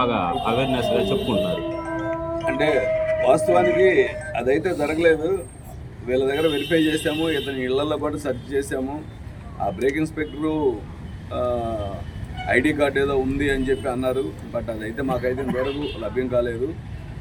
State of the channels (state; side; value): identical; both; correlation 1.00